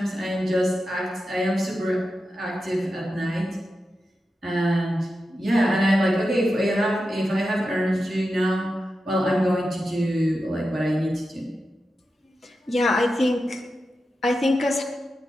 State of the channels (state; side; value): normal; both; correlation 0.90